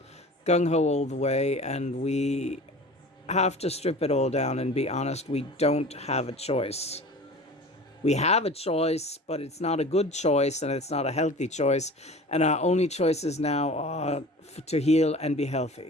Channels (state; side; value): normal; both; correlation 0.39